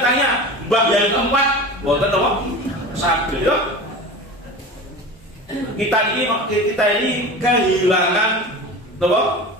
tanya mbah yang keempat, boten apa? Sakit ya. Kita ini kehilangan apa?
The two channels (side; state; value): both; normal; correlation 0.32